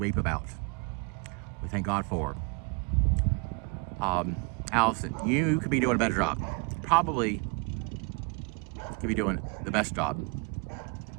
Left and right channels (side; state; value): left; quieter; 31.4 dB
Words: about. We thank God for. Allison, you could be doing a better job. Probably could be doing the best job.